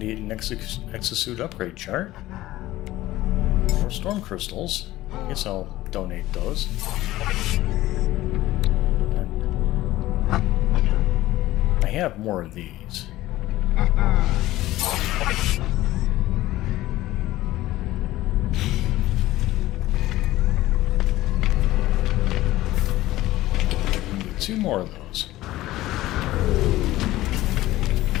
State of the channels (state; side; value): quieter; right; 16.3 dB